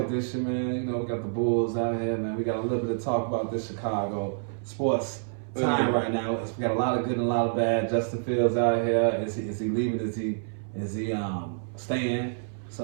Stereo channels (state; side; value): silent; left; 59 dB below the other